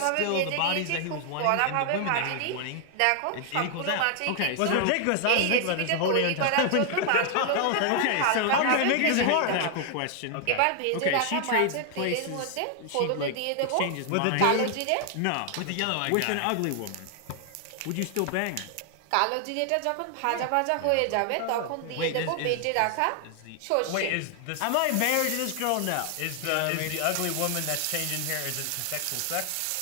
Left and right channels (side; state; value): both; different; correlation 0.00